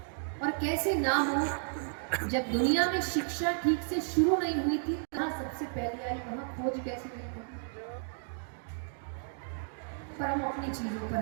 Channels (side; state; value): left; silent; digital silence